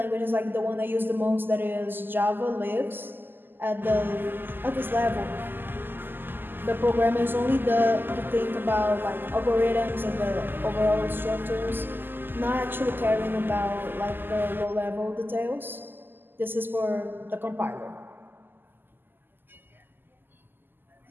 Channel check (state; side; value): late; left; 0.094 ms